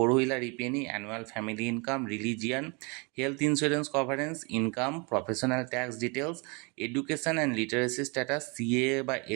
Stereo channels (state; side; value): quieter; left; 30.6 dB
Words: ইপিএনি, annual family income, religion, health insurance coverance, income, professional tax details, education and literacy status, CA বা